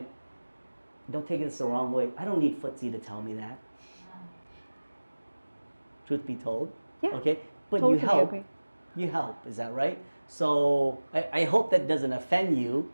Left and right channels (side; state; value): both; inverted; correlation -1.00